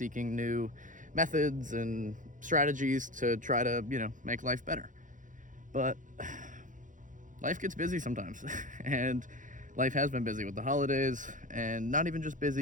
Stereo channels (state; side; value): late; left; 0.37 ms